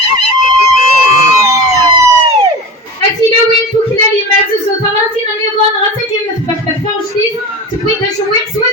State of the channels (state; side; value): normal; both; correlation 0.31